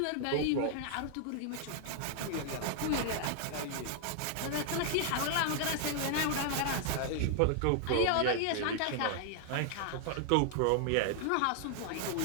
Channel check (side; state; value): both; different; correlation 0.00